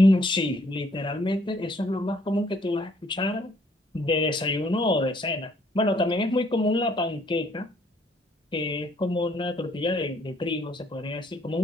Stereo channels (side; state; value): both; normal; correlation 0.65